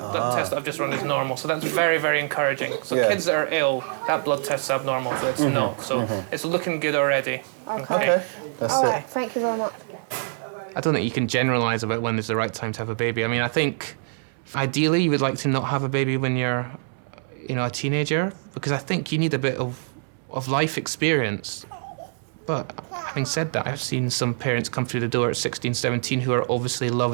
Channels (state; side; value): silent; left; 62 dB below the other